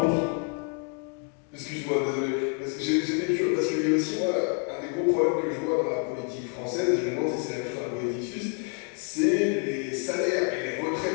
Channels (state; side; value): quieter; right; 39.1 dB